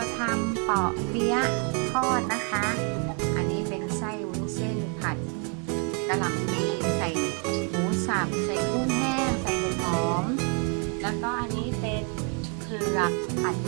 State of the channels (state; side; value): quieter; left; 37.9 dB